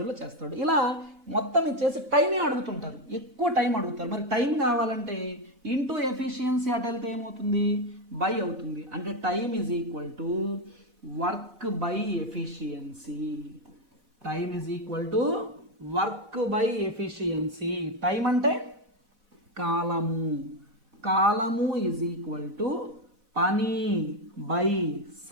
చేస్తాడు. ఇలా మొత్తం ఇచ్చేసి టైమే అడుగుతుంటారు, ఎక్కువ టైం అడుగుతారు. మరి టైం కావాలంటే ఇంటూ ఎఫిషియన్సీ అటు వెళ్తే ఏమవుతుంది, బై అవుతుంది. అంటే time = work by efficiency. Time అంటే కాలము పని బై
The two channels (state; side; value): late; left; 4.1 ms